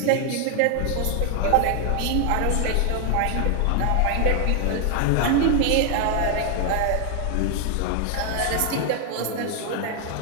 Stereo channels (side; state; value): both; different; correlation 0.00